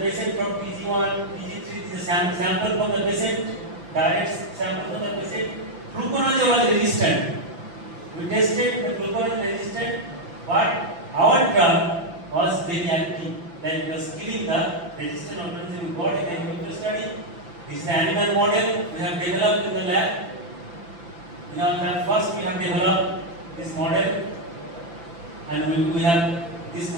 from PG1, PG3. This is a sample from the patient. Direct sample from the patient. Fluconazole was resistant. We tested the fluconazole resistant, but our drug was very active. Like it was killing the resistant organism. We got in the in vitro study. This is the animal model we have developed in the lab. In our lab, first we have developed this model, and we have this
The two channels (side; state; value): left; late; 5.9 ms